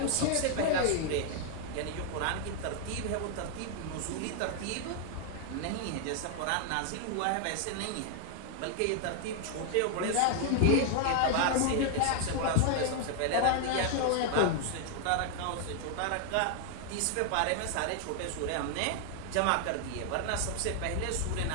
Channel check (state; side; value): different; both; correlation 0.00